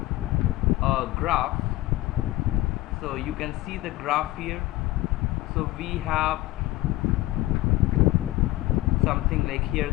a graph. So you can see the graph here. So we have something like here,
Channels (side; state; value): right; quieter; 17.6 dB